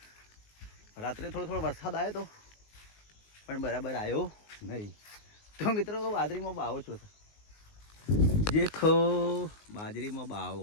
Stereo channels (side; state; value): right; late; 19 ms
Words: રાત્રે થોડો વરસાદ આવ્યો તો પણ બરાબર આવ્યો નહીં. તો મિત્રો બાજરીમાં બાવો છો દેખો, બાજરીમાં